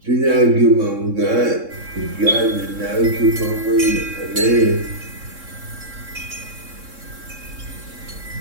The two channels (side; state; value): left; late; 3.7 ms